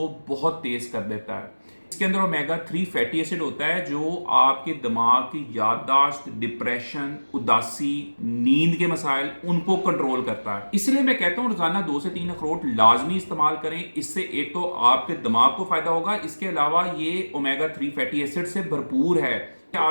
بہت تیز کر دیتا ہے۔ اس کے اندر اومیگا 3 فیٹی ایسڈ ہوتا ہے جو آپ کے دماغ کی یادداشت، ڈپریشن، اداسی، نیند کے مسائل ان کو کنٹرول کرتا ہے۔ اس لیے میں کہتا ہوں روزانہ 2 سے 3 اخروٹ لازمی استعمال کریں۔ اس سے ایک تو آپ کے دماغ کو فائدہ ہوگا، اس کے علاوہ یہ اومیگا 3 فیٹی ایسڈ سے بھرپور ہے۔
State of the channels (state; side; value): inverted; both; correlation -1.00